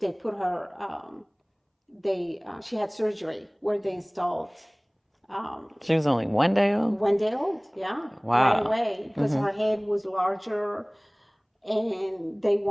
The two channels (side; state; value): both; identical; correlation 1.00